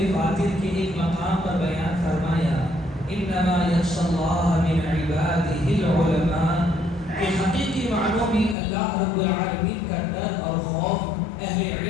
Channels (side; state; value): right; drops out; at 8.6 s